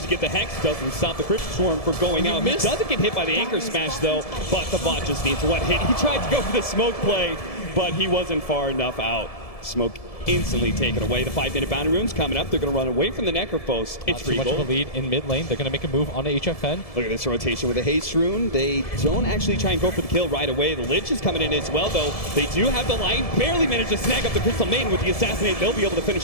to get the Hex, doesn't stop the Crypt Swarm from going out. He doesn't get hit by the Anchor Smash, though, but the bot just needs one hit. He tried to go for the smoke play, but he wasn't far enough out. Smoke instantly taken away. The 5-minute boundary rune's coming up. They're going to run away from the Necrophos. It's too much of a lead in mid lane. They're going to make a move onto HFN. Look at this rotation with the Haste Rune. They don't actually try and go for the kill right away. The Lich is coming in as well, though. They do have the line. Barely managed to snag up the Crystal Maiden with the Assassinate. They'll be able to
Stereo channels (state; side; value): late; right; 1.7 ms